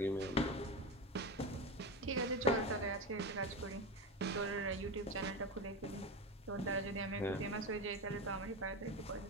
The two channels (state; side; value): normal; both; correlation 0.20